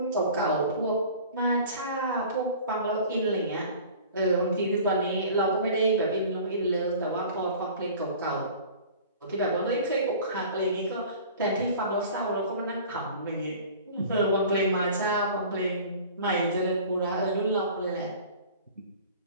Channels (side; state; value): both; inverted; correlation -0.43